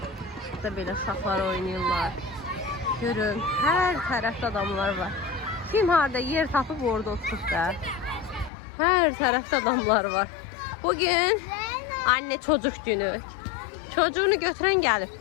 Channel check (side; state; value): right; drops out; at 8.5 s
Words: Burada belə uşaqlar oynayırlar. Görün, hər tərəfdə adamlar var. Kim harada yer tapıb orada oturub da. Hər tərəfdə adamlar var. Bugün anne çocuk günü. Çocuğunu götüren gelip.